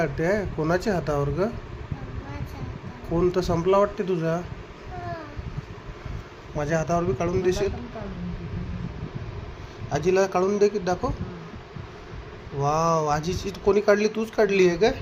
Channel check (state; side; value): identical; both; correlation 1.00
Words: आहे कोणाच्या हातावर ग? कोण तर संपला वाटते तुझा. माझ्या हातावर बी काढून देशील? आजीला काढून दे की दाखव. वाव, आजीची कोणी काढली? तूच काढली आहे काय?